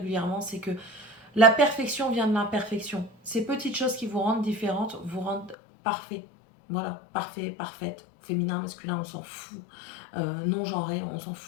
c'est que la perfection vient de l'imperfection. Ces petites choses qui vous rendent différentes vous rendent parfait. Voilà, parfait, parfaite. Féminin, masculin, on s'en fout. Non-genré, on s'en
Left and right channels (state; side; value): drops out; right; at 5.6 s